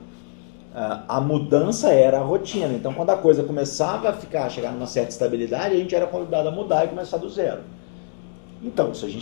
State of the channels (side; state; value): right; silent; 64 dB below the other